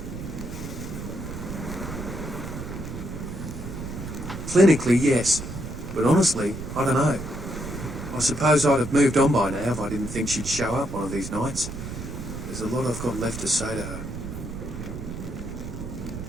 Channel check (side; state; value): right; noise; rumble, 8 dB below the sound